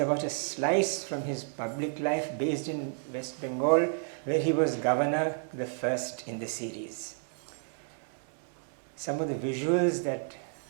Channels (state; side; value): silent; left; digital silence